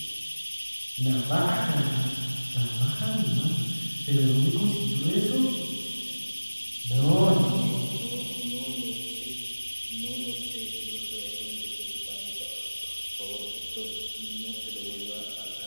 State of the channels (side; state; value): both; inverted; correlation -1.00